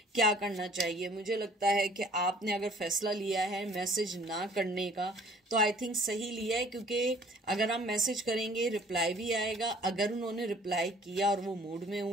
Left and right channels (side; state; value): both; normal; correlation 0.54